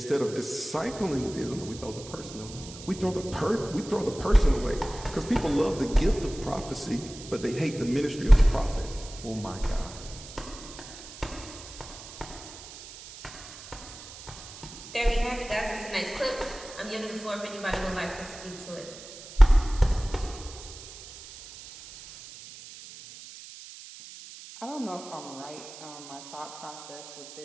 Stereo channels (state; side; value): noise; right; hiss, 15 dB below the sound